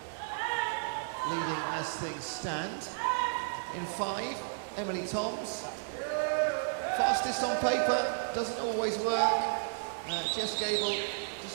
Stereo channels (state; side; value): silent; left; digital silence